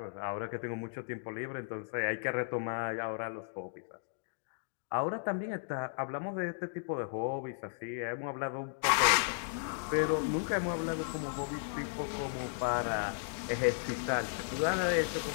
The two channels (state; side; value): silent; right; digital silence